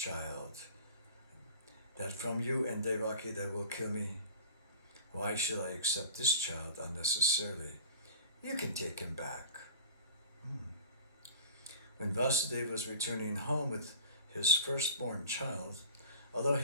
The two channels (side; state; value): both; inverted; correlation -0.41